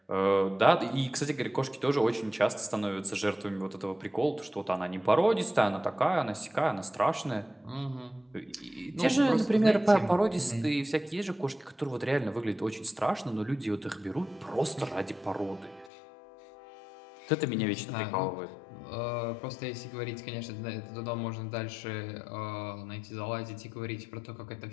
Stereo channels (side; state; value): right; drops out; at 15.9 s